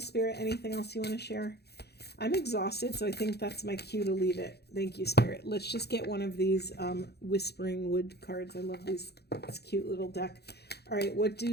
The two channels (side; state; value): right; late; 0.48 ms